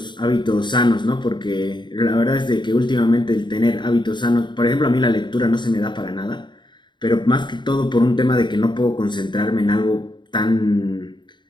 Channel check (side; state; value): right; late; 0.22 ms